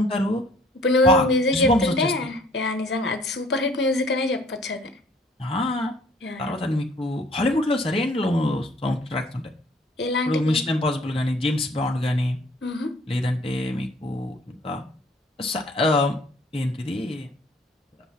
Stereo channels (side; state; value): both; normal; correlation 0.57